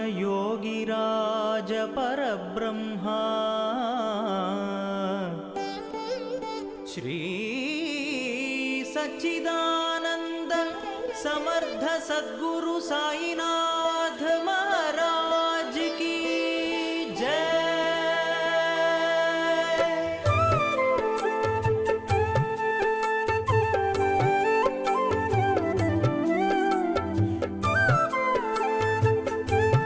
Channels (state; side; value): identical; both; correlation 1.00